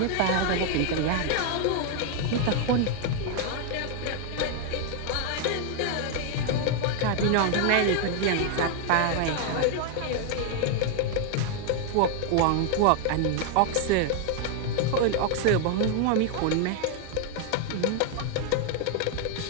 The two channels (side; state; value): both; different; correlation 0.00